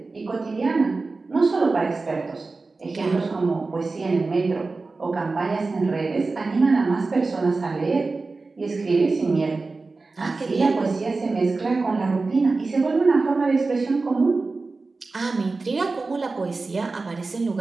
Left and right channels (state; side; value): quieter; left; 3.8 dB